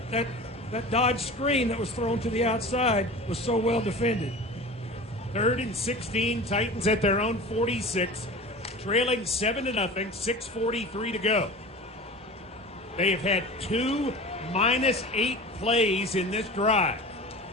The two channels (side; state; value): both; normal; correlation 0.35